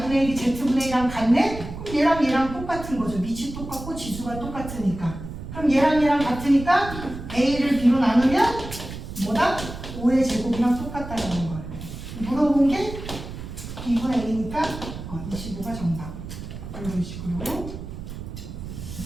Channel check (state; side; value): noise; right; rumble, 10 dB below the sound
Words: 1이 z분의 1이랑 같네? 그럼 얘랑 똑같은 거죠. 밑이 똑같고 지수가 똑같으니까. 그럼 얘랑 같으니까 a를 b로 나누면 뭐다? 5의 제곱이랑 똑같다라는 거예요. 물어본 게 b분의 1이니까 25가 정답. 이런 식으로.